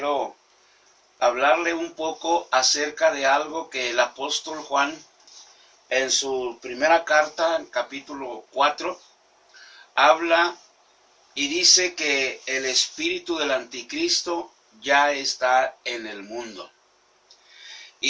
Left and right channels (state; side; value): identical; both; correlation 1.00